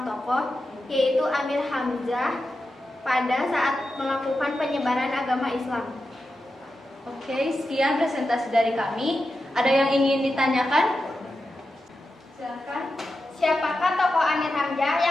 tokoh yaitu Amir Hamzah pada saat melakukan penyebaran agama Islam. Oke, sekian presentasi dari kami. Ada yang ingin ditanyakan? Silakan. Siapakah tokoh Amir Hamzah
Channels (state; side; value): normal; both; correlation 0.90